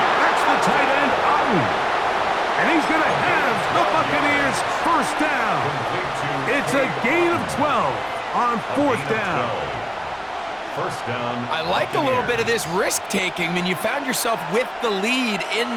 That's the tight end, Otten. And he's going to have the Buccaneers first down. It's a gain of 12 on fourth down. First down. I like a little bit of this risk-taking when you found yourself with the lead in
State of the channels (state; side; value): identical; both; correlation 1.00